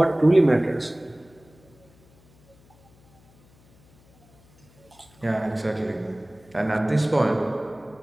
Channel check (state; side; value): noise; left; hum, 29 dB below the sound